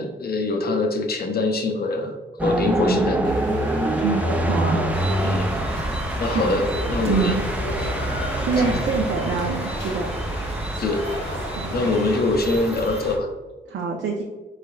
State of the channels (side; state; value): both; normal; correlation 0.57